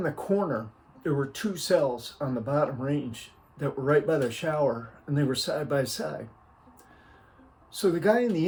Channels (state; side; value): identical; both; correlation 1.00